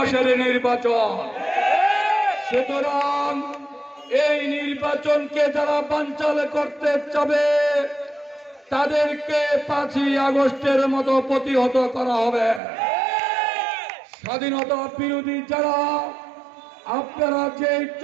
নির্বাচন। সুতরাং এই নির্বাচনকে যারা বানচাল করতে চাবে তাদেরকে 5ই আগস্টের মতো প্রতিহত করা হবে। স্বাধীনতা বিরোধী যারা আপনারা যে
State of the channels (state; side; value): drops out; left; at 12.6 s